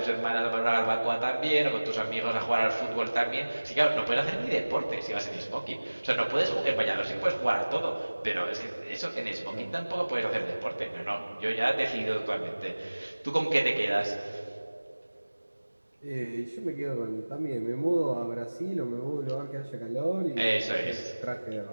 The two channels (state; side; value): inverted; both; correlation -1.00